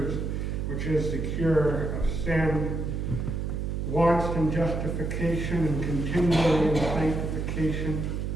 cure of sin, wants in justification and continually in sanctification.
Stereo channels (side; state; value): right; noise; hum, 2 dB below the sound